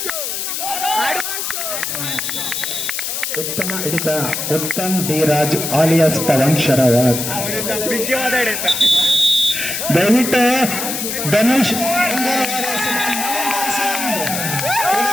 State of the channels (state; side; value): noise; left; hiss, 3 dB below the sound